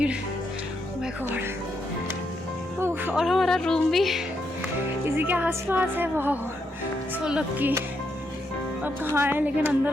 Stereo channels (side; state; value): both; normal; correlation 0.80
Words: My God. और हमारा रूम भी इसी के आसपास है। वाह, सो लकी। अब कहाँ है लेकिन अंदर